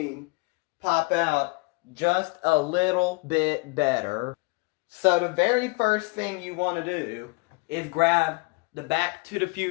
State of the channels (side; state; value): right; quieter; 28.4 dB